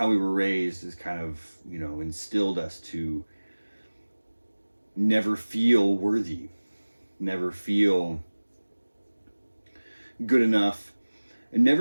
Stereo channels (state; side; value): inverted; both; correlation -1.00